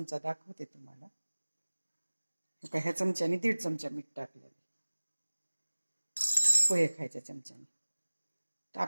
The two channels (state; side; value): inverted; both; correlation -1.00